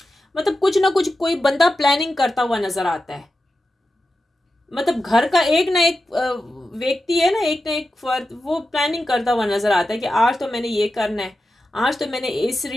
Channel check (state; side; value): normal; both; correlation 0.91